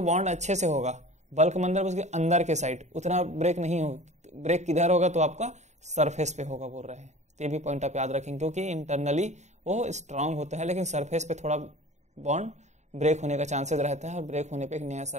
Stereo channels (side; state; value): left; late; 0.34 ms